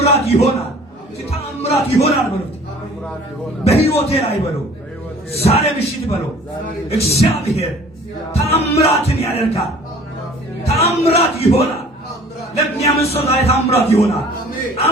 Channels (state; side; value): normal; both; correlation 0.50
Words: ይሆናል። ተአምራት ይሆናል በሉ። በህይወቴ ላይ በሉ። ዛሬ ምሽት በሉ። እግዚአብሔር ተአምራትን ያደርጋል። ተአምራት ይሆናል። ለሚያምን ሰው ዛሬ ተአምራት ይሆናል።